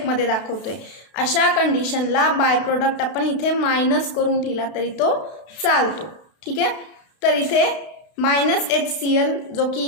दाखवतोय, अशा कंडिशनला बाय प्रोडक्ट आपण इथे मायनस करून लिहिला तरी तो चालतो. ठीक आहे. तर इथे -HCl जो की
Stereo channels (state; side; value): late; right; 32 ms